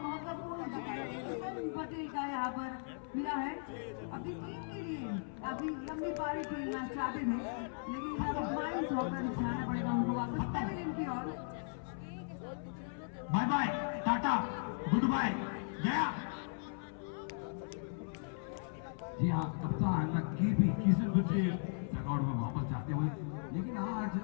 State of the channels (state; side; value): silent; right; 53 dB below the other